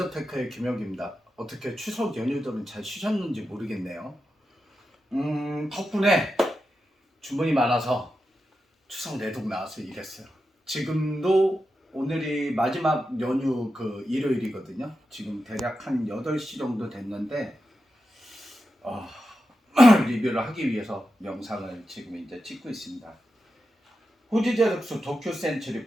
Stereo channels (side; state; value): both; normal; correlation 0.89